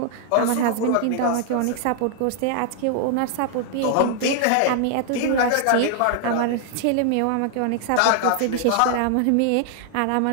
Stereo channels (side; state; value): both; different; correlation 0.00